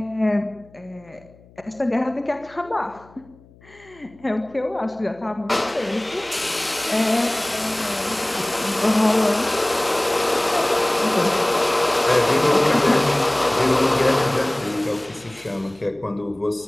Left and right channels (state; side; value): noise; left; hum, 26 dB below the sound